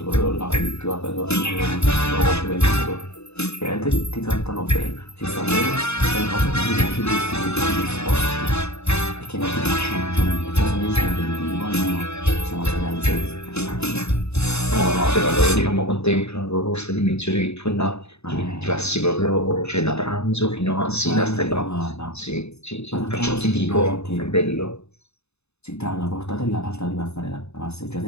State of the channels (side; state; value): right; late; 0.80 ms